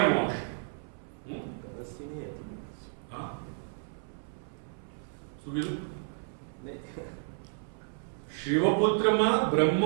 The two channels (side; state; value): left; silent; 56 dB below the other